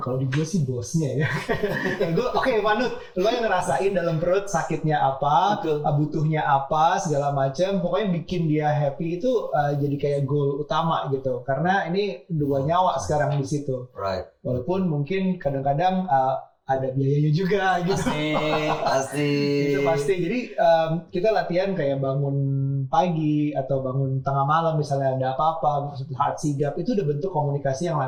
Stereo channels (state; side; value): identical; both; correlation 1.00